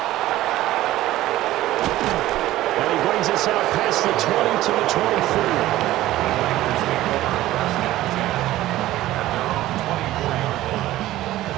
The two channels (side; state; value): left; quieter; 15.4 dB